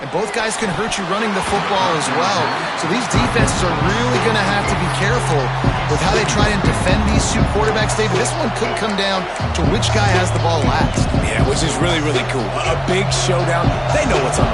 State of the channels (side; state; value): both; identical; correlation 1.00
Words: and both guys can hurt you running the football as well. So these defenses are really going to have to be careful with how they try and defend these two quarterbacks, David. This one could come down to which guy has the ball last. Yeah, which is really, really cool. A big showdown. They know what's on